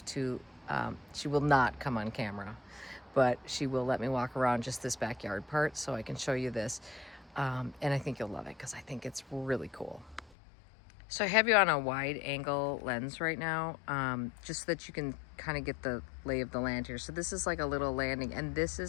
to, she will not come on camera, but she will let me walk around just this backyard part so I can show you this. And I think you'll love it because I think it's really cool. So I have you on a wide angle lens right now, just so that you can kind of get the lay of the land here. So this is like a little landing, and this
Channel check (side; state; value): right; drops out; at 10.3 s